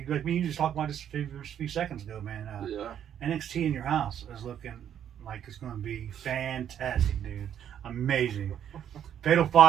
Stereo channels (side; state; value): left; quieter; 9.6 dB